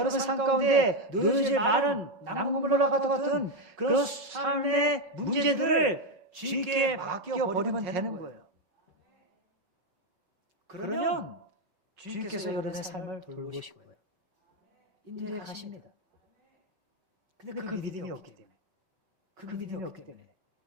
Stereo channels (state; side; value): late; left; 5.3 ms